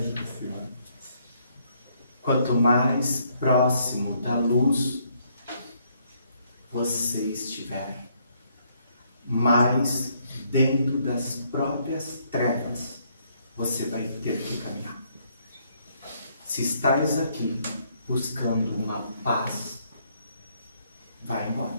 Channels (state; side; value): inverted; both; correlation -0.70